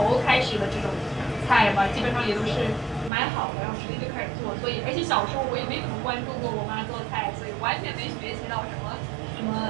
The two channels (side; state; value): left; drops out; at 3.1 s